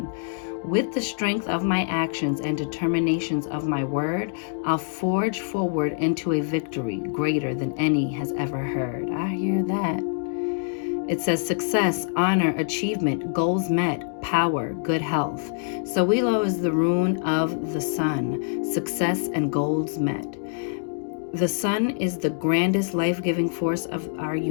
With the strength of my actions and determinations of my word, I'll forge forward into a victory greater than any has ever heard. I hear that. It says success, honor, achievement, goals met, power, good health. Sowilo is the rune of the sun, success and goals met. The sun is the grandest life-giving force of our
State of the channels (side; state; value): right; silent; digital silence